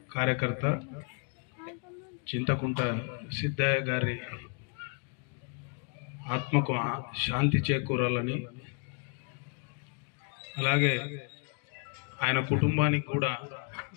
కార్యకర్త చింతకుంట సిద్ధయ్య గారి ఆత్మకు శాంతి చేకూరాలని, అలాగే ఆయన కుటుంబానికి కూడా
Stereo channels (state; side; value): quieter; right; 37.7 dB